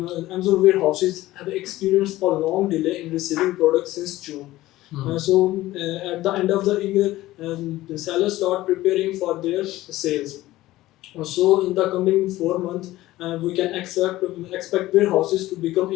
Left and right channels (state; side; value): quieter; right; 16.6 dB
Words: warehouses have experienced a long delay in receiving products since June. So at the end of the year, the sellers start preparing for their sales. So in the coming 4 months, we can expect warehouses to become